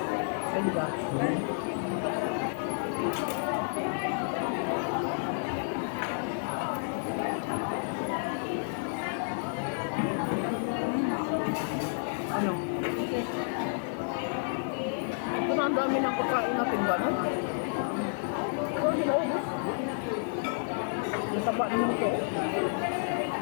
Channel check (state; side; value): silent; right; digital silence